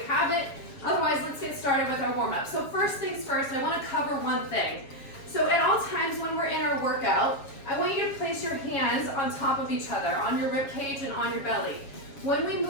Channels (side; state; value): right; late; 7.2 ms